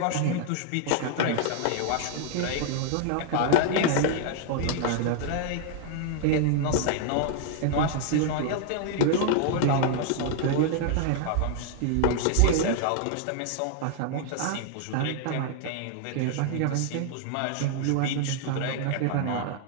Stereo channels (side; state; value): both; different; correlation 0.00